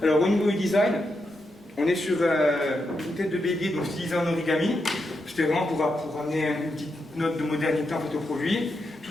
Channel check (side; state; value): both; normal; correlation 0.85